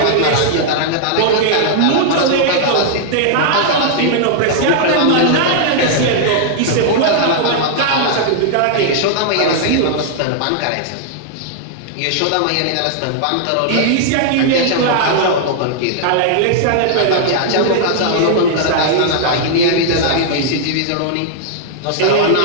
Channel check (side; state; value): both; different; correlation -0.01